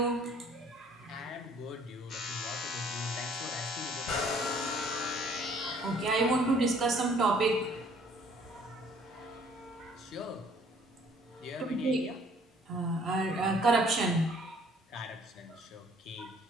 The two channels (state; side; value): normal; both; correlation 0.58